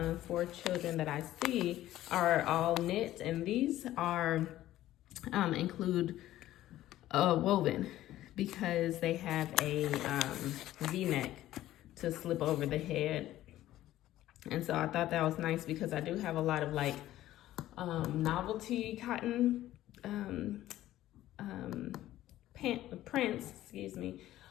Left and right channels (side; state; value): right; quieter; 14.2 dB